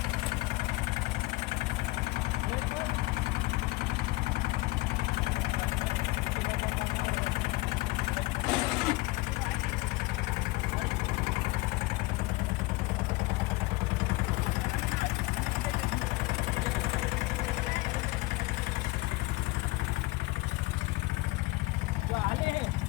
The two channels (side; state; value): right; quieter; 21.4 dB